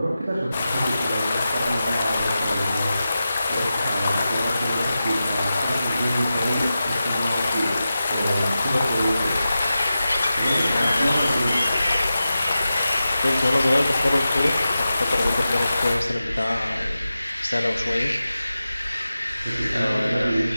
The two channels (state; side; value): inverted; both; correlation -0.93